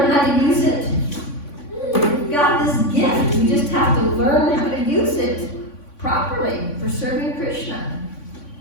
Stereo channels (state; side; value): late; right; 3.5 ms